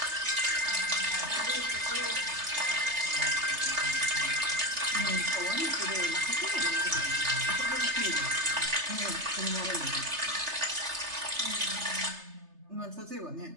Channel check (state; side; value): late; left; 3.3 ms